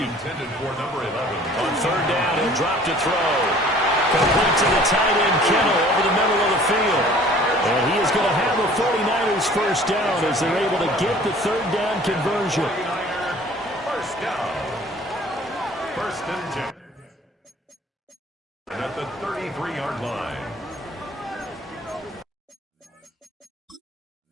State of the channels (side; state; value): both; normal; correlation 0.51